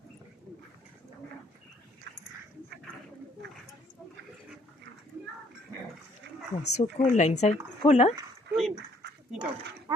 Oh, so cold inside. Cold, huh? Air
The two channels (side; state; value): both; normal; correlation 0.64